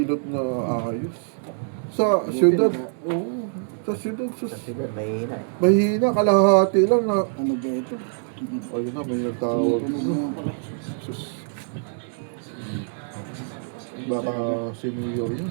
na ayos. Sa syudad. Oo. Sa syudad. Kasi mahina eh. Mahina, kalahati lang na. Ano ba ito? Ayun na, may nagtawag. Tunog mo pala. Sus. Baka si Mayor yun.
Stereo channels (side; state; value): left; silent; digital silence